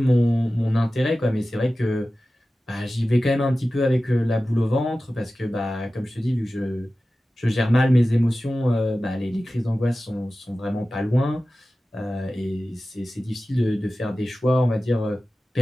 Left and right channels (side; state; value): both; normal; correlation 0.95